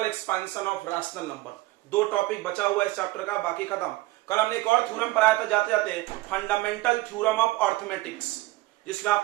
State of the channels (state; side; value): quieter; left; 19.2 dB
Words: expansion of rational number, दो टॉपिक बचा हुआ है इस चैप्टर का, बाकी खत्म। कल हमने एक और थ्योरम पढ़ाया था जाते जाते, फंडामेंटल थ्योरम ऑफ अर्थमेटिक्स, जिसमें